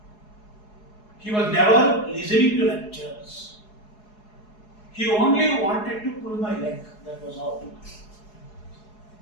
He was never listening to lectures. He only wanted to pull my leg, that was all.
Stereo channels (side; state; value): right; late; 4.7 ms